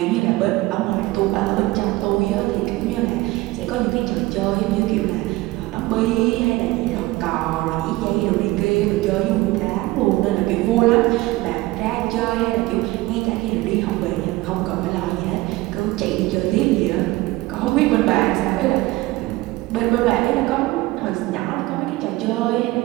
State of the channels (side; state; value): left; quieter; 19.6 dB